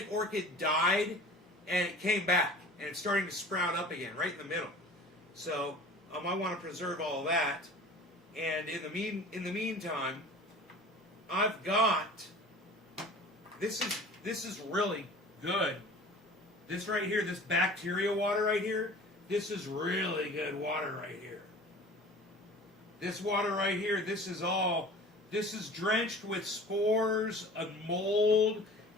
orchid died and it came back and it's starting to sprout up again right in the middle. So I want to preserve all of that. And in the meantime, I've got this is really good. This right here, this bacteria water right here, this is really good water right here. This water right here, this is drenched with spores of mold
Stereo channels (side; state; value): both; normal; correlation 0.42